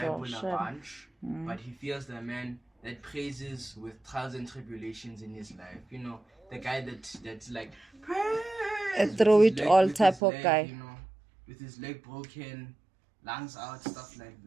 sure. a bunch, but he fears the man that praises with trials and tribulations in his life. The guy that's like praise. A throw with it his all with type his of leg, guy. with his leg broken, lungs out, stuff like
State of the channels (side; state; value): left; drops out; at 10.2 s